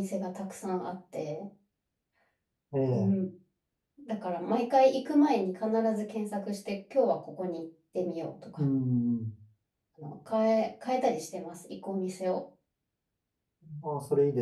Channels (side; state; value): both; identical; correlation 1.00